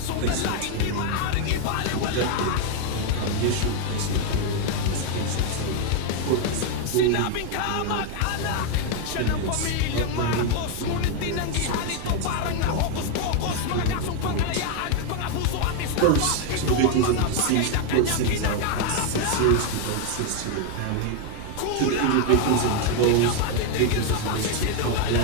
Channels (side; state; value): both; different; correlation 0.01